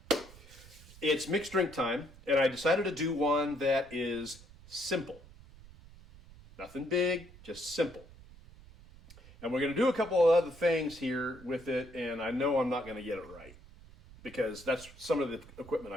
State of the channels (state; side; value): noise; right; rumble, 20 dB below the sound